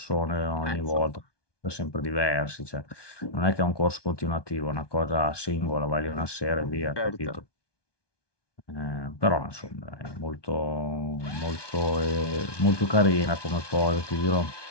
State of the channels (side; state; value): right; late; 1.2 ms